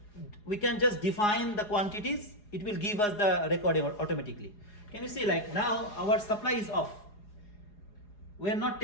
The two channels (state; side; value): late; right; 4.8 ms